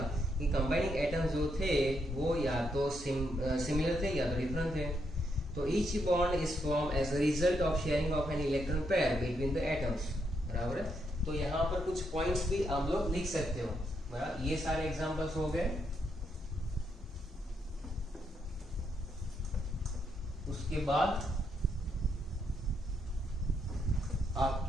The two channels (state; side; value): normal; both; correlation 0.78